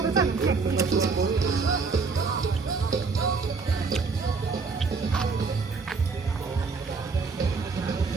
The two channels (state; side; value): quieter; left; 4.6 dB